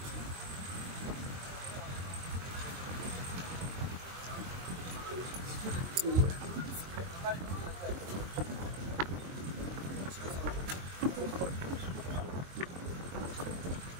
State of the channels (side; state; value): left; late; 22 ms